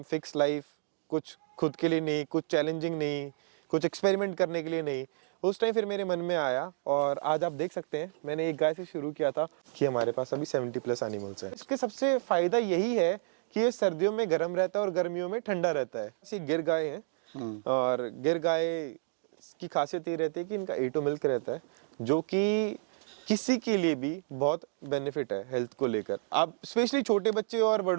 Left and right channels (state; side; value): silent; left; digital silence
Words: फिक्स लाइफ, कुछ खुद के लिए नहीं, कुछ चैलेंजिंग नहीं, कुछ एक्सपेरिमेंट करने के लिए नहीं। उस टाइम फिर मेरे मन में आया और आज आप देख सकते हैं मैंने एक गाय से शुरू किया था कि हमारे पास अभी 70+ एनिमल्स हैं। इसके सबसे फ़ायदा यही है कि ये सर्दियों में गर्म रहता है और गर्मियों में ठंडा रहता है। ये गिर गाय हैं और गिर गाय की खासियत ये रहती है कि इनका A2 मिल्क रहता है, जो कि किसी के लिए भी बहुत बेनिफिट है हेल्थ को लेकर। आप स्पेशली छोटे बच्चे और